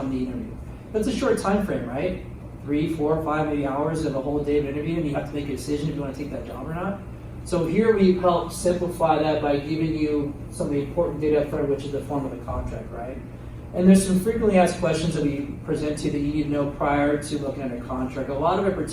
the interview. That's a short time frame, right? 3, 4, 5, maybe hours of a whole day of interview, and you have to make a decision if you want to take that job or not. So here we help simplify that by giving you some of the important data up front, which is the form of the contract, right? And there's some frequently asked questions that we present to you that you need to know prior to looking at a contract. A lot of it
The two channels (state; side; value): identical; both; correlation 1.00